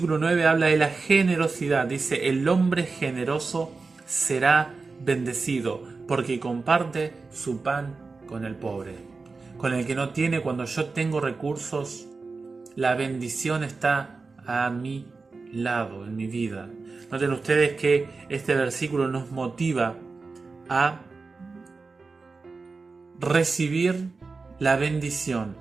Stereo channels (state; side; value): quieter; left; 4.1 dB